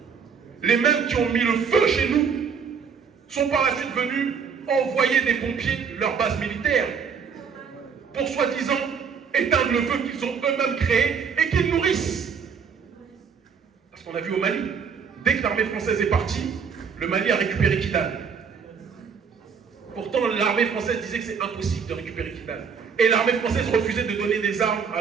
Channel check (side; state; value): left; quieter; 6.3 dB